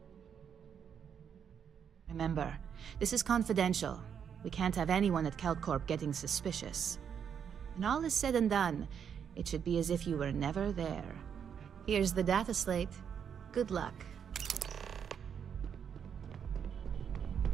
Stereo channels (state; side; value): quieter; left; 7.7 dB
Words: Remember, this is confidential. We can't have anyone at Kelt Corp getting suspicious. When all is said and done, it should be as if you were never there. Here's the data slate. Good luck.